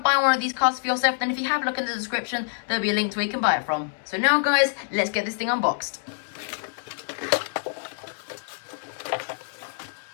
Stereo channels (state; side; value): silent; right; digital silence